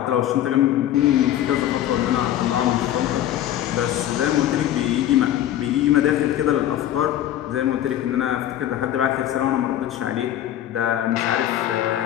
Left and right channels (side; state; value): right; quieter; 12.1 dB